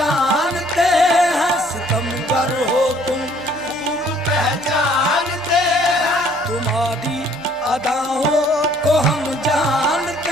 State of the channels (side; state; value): both; normal; correlation 0.60